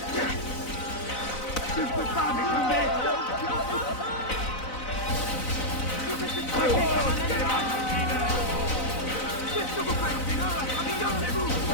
Je ne peux pas m'échapper! Qu'est-ce que vous faites? Regardez-vous!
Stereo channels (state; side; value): late; right; 4.0 ms